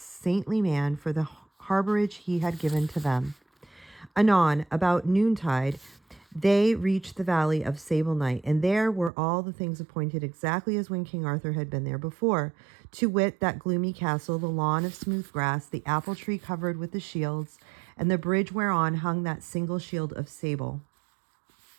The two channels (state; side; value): drops out; left; at 9.1 s